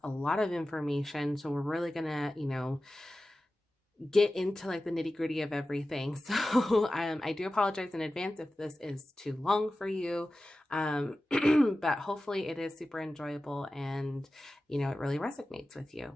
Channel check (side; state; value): both; normal; correlation 0.95